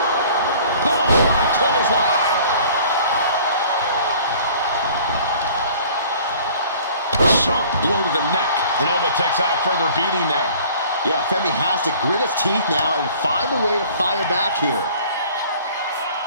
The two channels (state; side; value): inverted; both; correlation -0.50